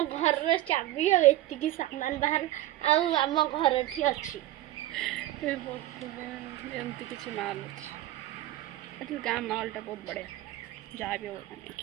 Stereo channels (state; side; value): quieter; left; 15.0 dB